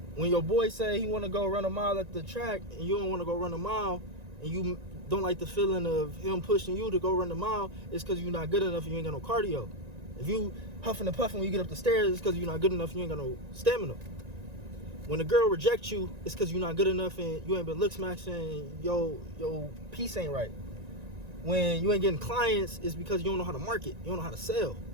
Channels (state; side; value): late; left; 1.9 ms